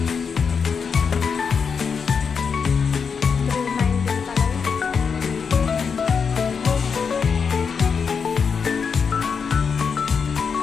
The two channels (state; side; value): quieter; right; 6.0 dB